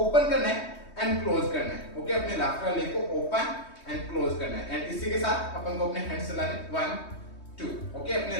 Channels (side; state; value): right; late; 3.2 ms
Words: ओपन करना है एंड क्लोज करना है। ओके, अपने लेफ्ट वाले लेग को ओपन एंड क्लोज करना है, एंड इसी के साथ अपन को अपने हैंड्स चलाने 1 2। ओके, अपने